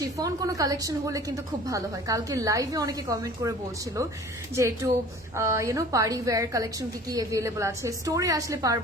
কোনো কালেকশন হলে কিন্তু খুব ভালো হয়। কালকে লাইভে অনেকে কমেন্ট করে বলছিল যে একটু পার্টি ওয়্যার কালেকশন কি অ্যাভেলেবল আছে, স্টোরে আসলে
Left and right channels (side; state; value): both; normal; correlation 0.46